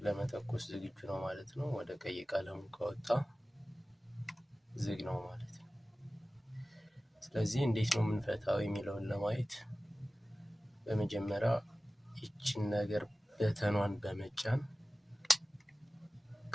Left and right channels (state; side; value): normal; both; correlation 0.97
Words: ለመተኮስ ዝግጁ ነው ማለት ነው። ወደ ቀይ ቀለሙ ከወጣ ዝግ ነው ማለት ነው። ስለዚህ እንዴት ነው የምንፈታው የሚለውን ለማየት በመጀመሪያ ይችን ነገር በተኗን በመጫን